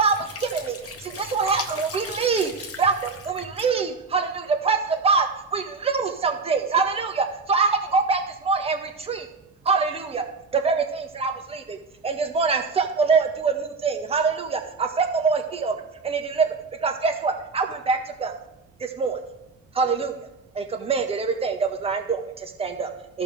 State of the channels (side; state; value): left; quieter; 4.4 dB